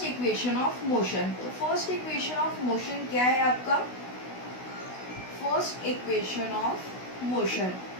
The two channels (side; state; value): right; late; 16 ms